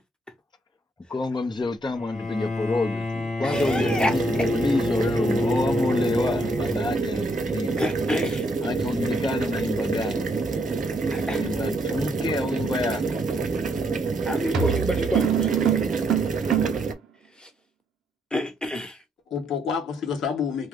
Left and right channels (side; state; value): both; normal; correlation 0.73